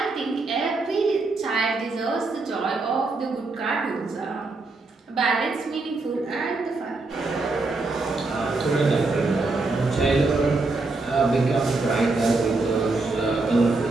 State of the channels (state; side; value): quieter; left; 3.5 dB